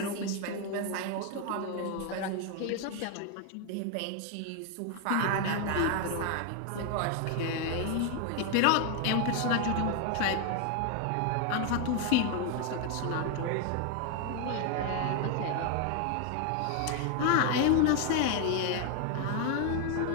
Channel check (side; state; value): both; different; correlation 0.01